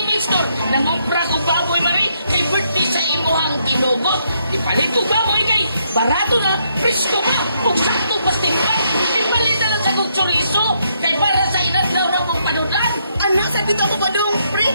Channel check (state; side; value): inverted; both; correlation -0.74